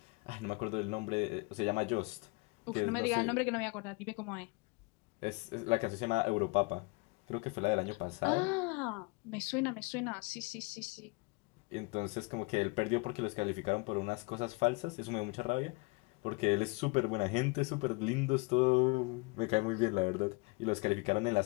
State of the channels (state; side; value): quieter; right; 28.3 dB